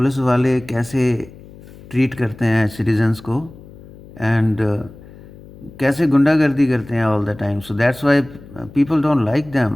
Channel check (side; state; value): left; noise; hum, 20 dB below the sound